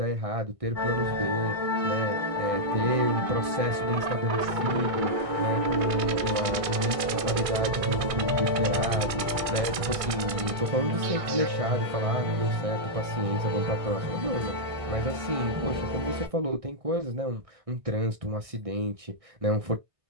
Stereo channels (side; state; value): left; late; 1.6 ms